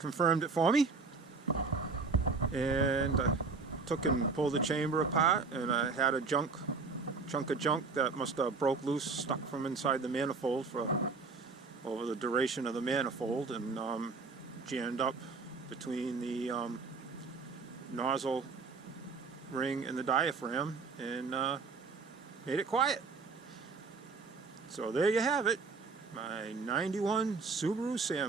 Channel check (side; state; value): left; quieter; 4.4 dB